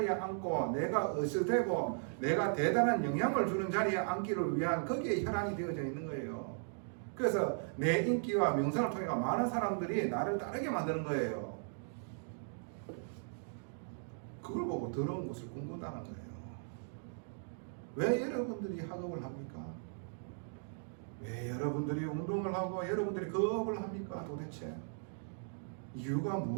앉고 내가 으스대고 내가 대단한 영향을 주는 자리에 앉기를 위한 거기에 혈안이 되어져 있는 거예요. 그래서 내 인기와 명성을 통해 많은 사람들이 나를 따르게 만드는 거예요. 그걸 보고 더러운 것을 꿈꾼다는 거예요. 왜 여러분들이 학업을 합니까? 왜 여러분들이 운동을 하고 여러분들이 거업을 합니까? 도대체 이유가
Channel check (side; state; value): left; silent; digital silence